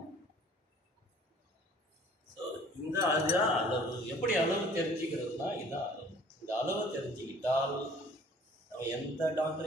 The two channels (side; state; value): both; normal; correlation 0.52